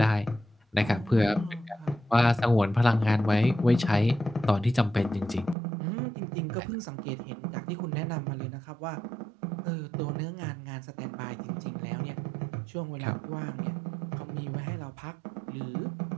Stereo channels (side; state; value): left; drops out; at 5.6 s